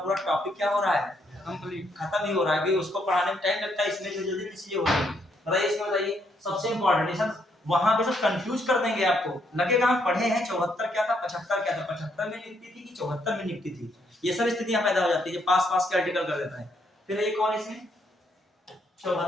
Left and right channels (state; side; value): normal; both; correlation 0.73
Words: टॉपिक क्या हो रहा है? कंप्लीट, खत्म ही हो रहा है। कि उसको पढ़ाने में टाइम लगता है, इसमें जो जल्दी चीजें हो रही है। बताइए इसमें, बताइए सबसे इंपॉर्टेंट सब वहां पे सब कंफ्यूज कर देंगे आपको। लगेगा हम पढ़े हैं 74 क्या था, 75 क्या था, 75 में नियुक्ति थी कि 74 में नियुक्ति थी। ये सब स्थितियां पैदा हो जाती है जब पास पास के आर्टिकल कर देता है। फिर ये कौन इसमें